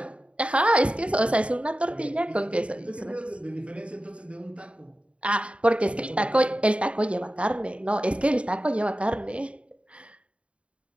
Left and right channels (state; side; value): late; left; 0.060 ms